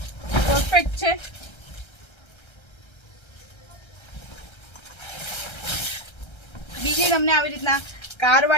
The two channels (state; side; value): late; right; 1.3 ms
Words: પરફેક્ટ છે. બીજી તમને આવી રીતના કાર